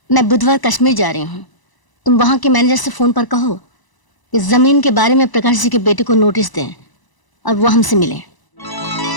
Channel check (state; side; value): late; right; 1.0 ms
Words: मैं बुधवार कश्मीर जा रही हूँ। तुम वहां के मैनेजर से फोन पर कहो कि जमीन के बारे में प्रकाश जी के बेटे को नोटिस दें और वो हमसे मिलें।